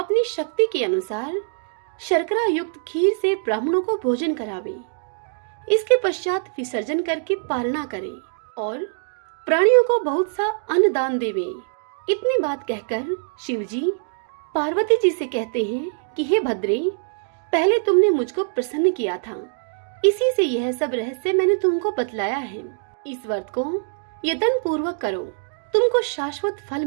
शक्ति के अनुसार शर्करा युक्त खीर से ब्राह्मणों को भोजन करावे। इसके पश्चात विसर्जन करके पारणा करे और प्राणियों को बहुत सा अन्न दान देवे। इतनी बात कहकर शिवजी पार्वती जी से कहते हैं कि हे भद्रे, पहले तुमने मुझको प्रसन्न किया था, इसी से यह सब रहस्य मैंने तुमको बतलाया है। इस व्रत को यत्न पूर्वक करो, तुमको शाश्वत फल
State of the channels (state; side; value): silent; left; digital silence